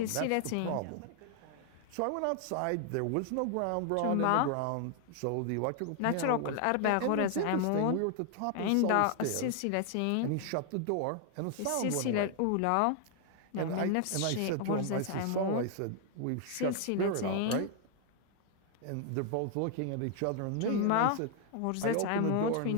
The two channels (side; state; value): both; different; correlation 0.00